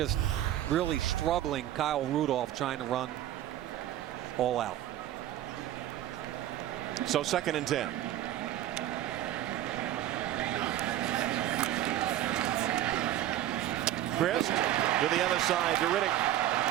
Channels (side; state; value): left; quieter; 12.8 dB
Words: really struggling Kyle Rudolph trying to run all out. So 2nd and 10. Christ to the other side to Riddick.